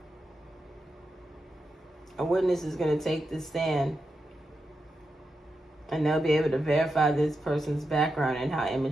A witness is going to take the stand. And they'll be able to verify this person's background and how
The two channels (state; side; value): normal; both; correlation 0.87